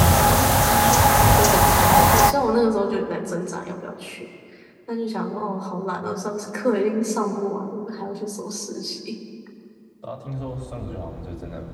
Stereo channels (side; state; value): both; identical; correlation 1.00